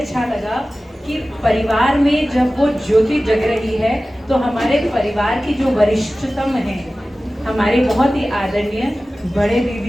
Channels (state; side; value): normal; both; correlation 0.96